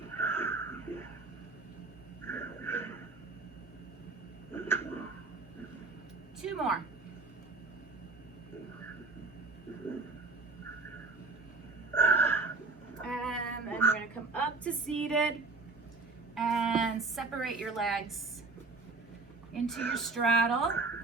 Two more. And then we're going to come up to seated and separate your legs into your straddle.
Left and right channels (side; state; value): left; quieter; 3.7 dB